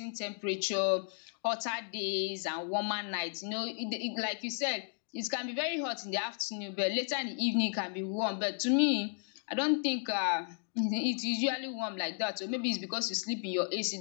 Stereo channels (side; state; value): right; silent; 55 dB below the other